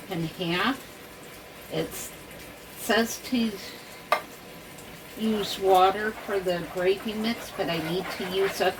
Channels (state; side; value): identical; both; correlation 1.00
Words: and half. It says to use water for the gravy mix, but I need to use up